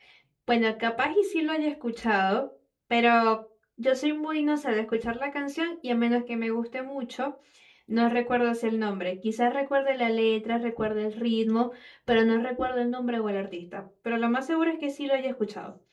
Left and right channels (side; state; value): both; identical; correlation 1.00